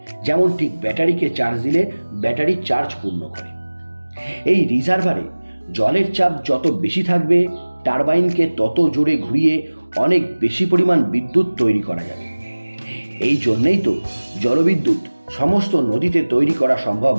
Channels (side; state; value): both; inverted; correlation -1.00